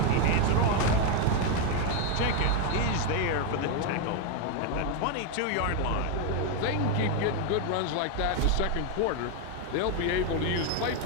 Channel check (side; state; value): both; different; correlation 0.01